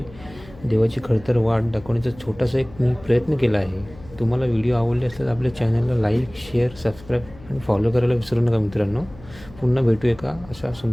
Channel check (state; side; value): noise; left; hum, 20 dB below the sound